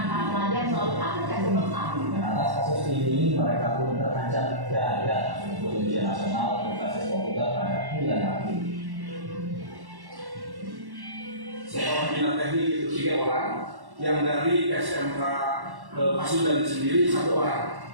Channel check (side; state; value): left; late; 1.1 ms